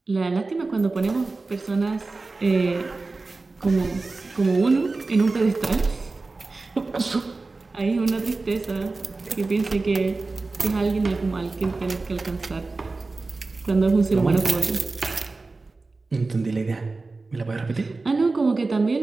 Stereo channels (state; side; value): quieter; left; 3.6 dB